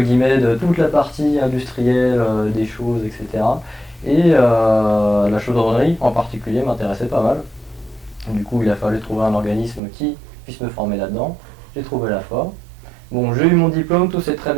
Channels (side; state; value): left; drops out; at 9.8 s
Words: de toute la partie industrielle des choses, etc. Et la chaudronnerie en particulier m'intéressait pas mal. Du coup, il a fallu trouver un organisme qui puisse me former là-dedans. J'ai trouvé la FOR. Bon, j'ai eu mon diplôme, tout s'est très